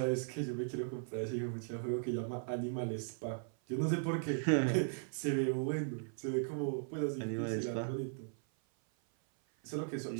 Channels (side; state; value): left; silent; 53 dB below the other